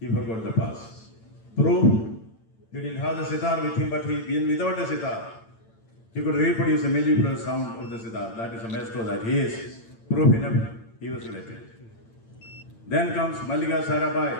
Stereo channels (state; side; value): late; right; 8.9 ms